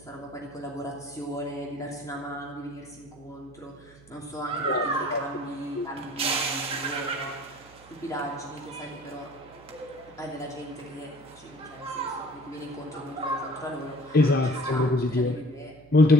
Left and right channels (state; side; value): noise; right; hum, 24 dB below the sound